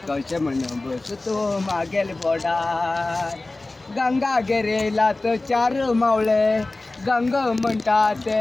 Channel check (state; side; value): quieter; right; 3.1 dB